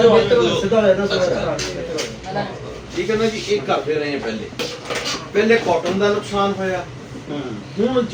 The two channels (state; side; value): identical; both; correlation 1.00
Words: ਠੀਕ ਹੈ ਨਾ ਜੀ। ਇਹ ਕਰਦੇ ਰਹੇ ਪਹਿਲੇ ਕਾਟਨ ਦਾ ਨੁਕਸਾਨ ਹੋਇਆ। ਹੁਣ